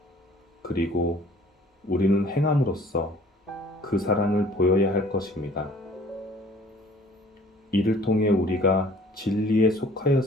그리고 우리는 행함으로써 그 사랑을 보여야 할 것입니다. 이를 통해 우리가 진리에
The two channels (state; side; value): normal; both; correlation 0.53